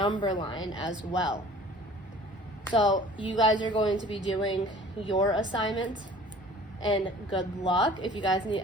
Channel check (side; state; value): both; normal; correlation 0.48